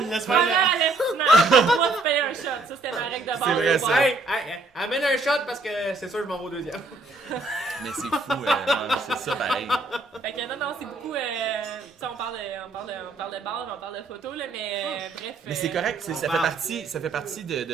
Laisse-moi avertissement. Moi, tu payes un shot. Ça, c'était ma règle de base. C'est vrai, ça. Hey, amène un shot parce que c'est sûr, je m'en vais au deuxième. Mais c'est fou, c'est ça pareil. Fait que non, c'est beaucoup. On parle de base, on parle de photos, là, mais bref. Mais c'est correct, ça fait partie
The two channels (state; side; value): quieter; left; 3.3 dB